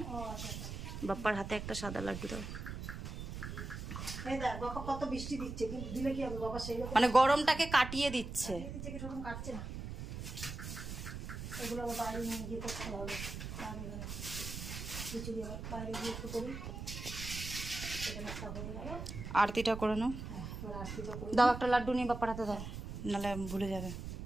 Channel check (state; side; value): noise; right; rumble, 7 dB below the sound